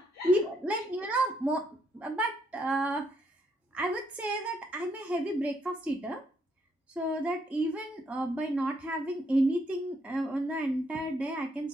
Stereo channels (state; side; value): normal; both; correlation 0.74